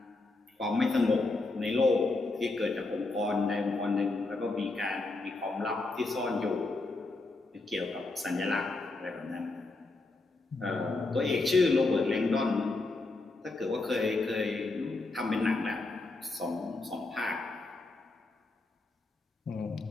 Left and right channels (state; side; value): quieter; right; 3.2 dB